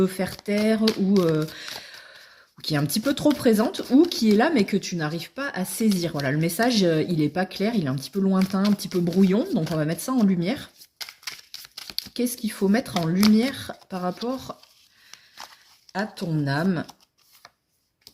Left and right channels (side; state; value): both; identical; correlation 1.00